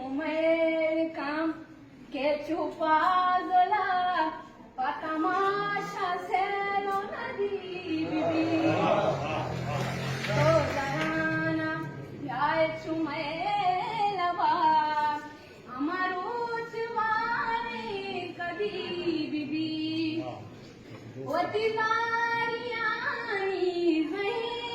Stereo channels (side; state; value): both; identical; correlation 1.00